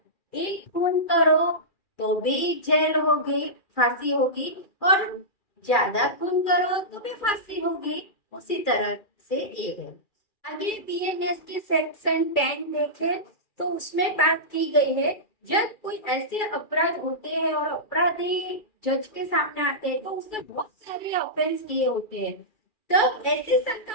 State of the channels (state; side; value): late; right; 2.4 ms